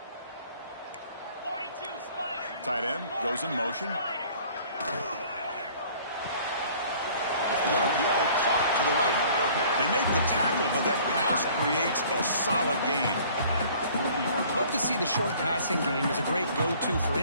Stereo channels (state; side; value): inverted; both; correlation -0.53